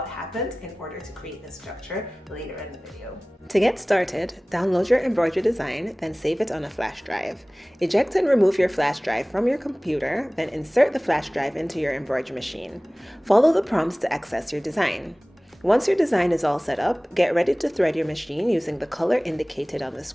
happened in order to create the structure later in the video. To get started, download your embroidery design, then save it on a flash drive. Eject and remove your flash drive from your computer, then insert the flash drive into your embroidery machine. Follow the prompts to access your design. Once your design is all set up, get ready to thread your machine using the color indicated on the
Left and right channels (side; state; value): both; normal; correlation 0.98